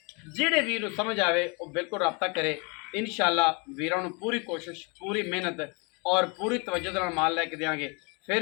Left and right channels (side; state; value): right; quieter; 31.4 dB